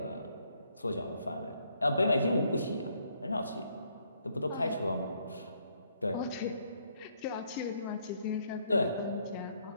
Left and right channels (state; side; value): inverted; both; correlation -0.70